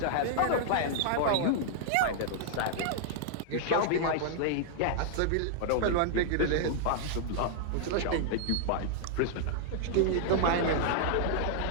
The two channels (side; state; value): both; different; correlation -0.01